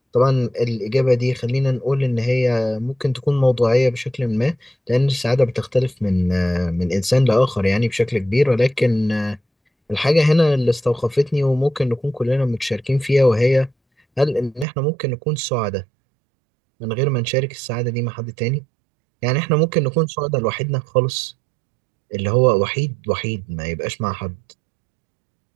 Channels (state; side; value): drops out; left; at 14.7 s